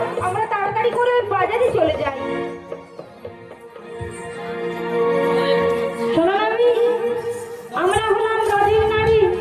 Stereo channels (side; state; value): both; identical; correlation 1.00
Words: আমরা তাড়াতাড়ি করে ওই বাজারে চলে যাই। শোনো নাভি, আমরা হলাম নদীর নারী।